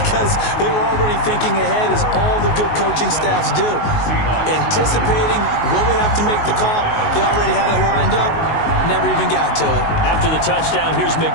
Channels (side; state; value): right; late; 19 ms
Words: they were already thinking ahead, as all the good coaching staffs do. Anticipating, will we have to make the call? They already had it lined up. Never even got to it. After the touchdown, here's